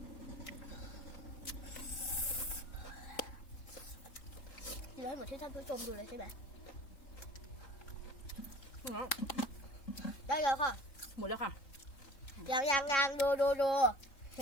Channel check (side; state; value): right; late; 3.7 ms